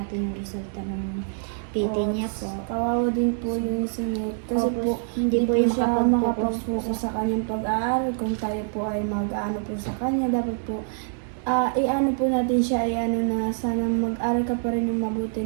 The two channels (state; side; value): silent; left; 62 dB below the other